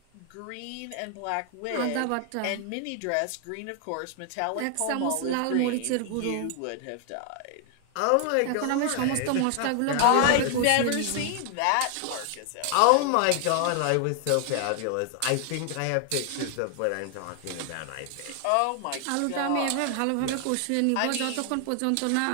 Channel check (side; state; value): both; different; correlation 0.00